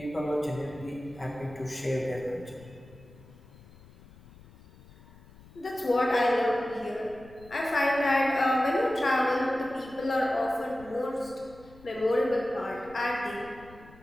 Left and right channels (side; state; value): left; noise; rumble, 22 dB below the sound